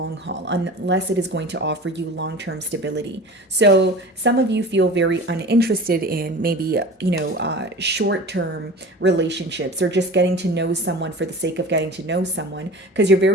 haul, unless it is going to offer you long-term stability. So some of you feel very uninterested in maybe, short-term relationships, or just getting to know someone for the sake of getting to know someone, because you're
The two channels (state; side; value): normal; both; correlation 0.37